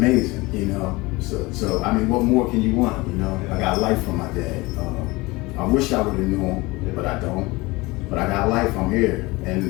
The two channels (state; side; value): quieter; right; 22.7 dB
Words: you know. So I mean, what more can you want, you know? I got life from my dad. I wish I would have known him, but I don't. But I got life, I'm here,